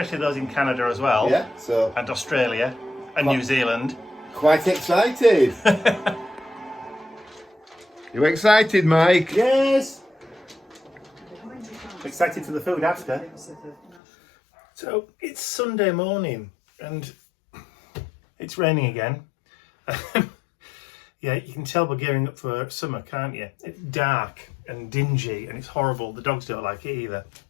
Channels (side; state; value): right; drops out; at 14.0 s